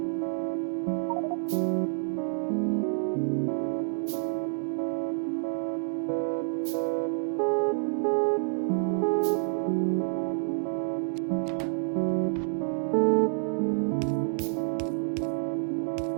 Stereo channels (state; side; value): silent; left; digital silence